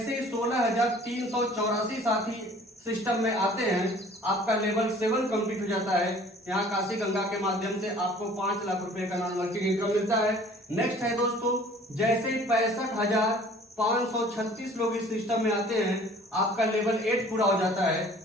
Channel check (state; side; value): normal; both; correlation 0.51